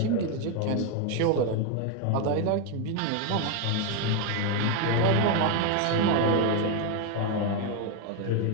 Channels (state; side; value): different; both; correlation 0.02